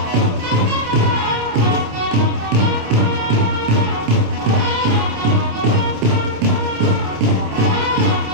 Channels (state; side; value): late; left; 27 ms